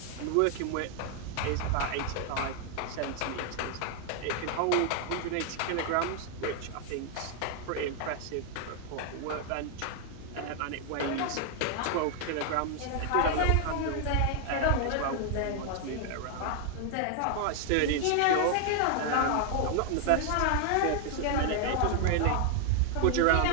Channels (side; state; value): both; different; correlation 0.00